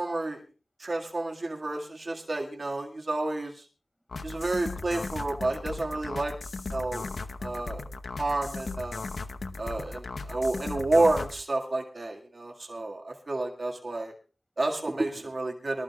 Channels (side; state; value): both; normal; correlation 0.97